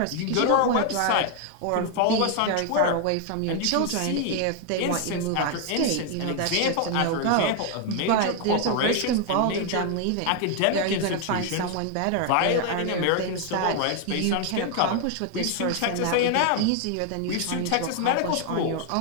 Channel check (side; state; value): both; different; correlation 0.00